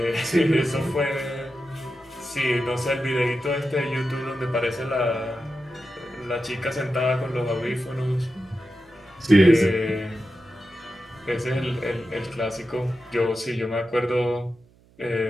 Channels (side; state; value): right; noise; hum, 30 dB below the sound